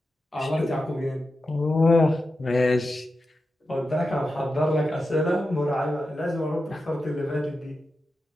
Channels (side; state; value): both; normal; correlation 0.90